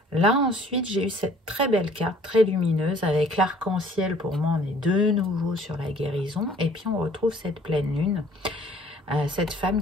Là, ensuite, j'ai eu cette très belle carte, très lumineuse, avec l'arc-en-ciel. Pour moi, on est de nouveau sur la guérison. Et puis, on retrouve cette pleine lune. Cette femme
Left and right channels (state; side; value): normal; both; correlation 0.55